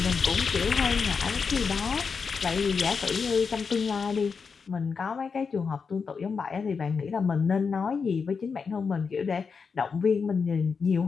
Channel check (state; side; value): quieter; right; 5.5 dB